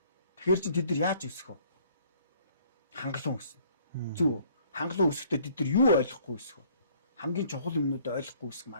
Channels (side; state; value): both; inverted; correlation -0.59